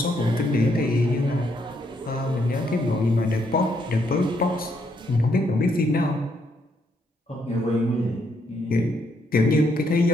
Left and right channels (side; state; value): both; normal; correlation 0.74